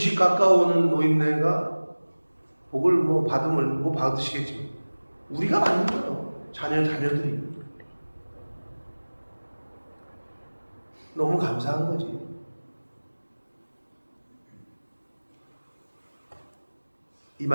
가까워오는 노인네가 복을 뭐 받으면 뭐 받으시겠지만 우리가 받는 거예요. 자녀들이. 너무 감사한 거지. 이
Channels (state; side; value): inverted; both; correlation -1.00